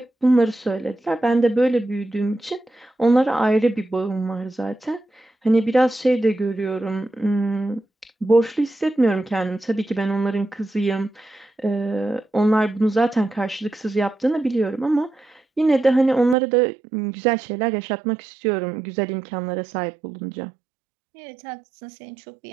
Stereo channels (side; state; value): left; drops out; at 16.4 s